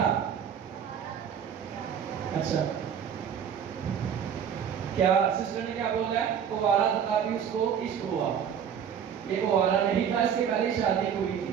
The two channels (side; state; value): left; quieter; 8.2 dB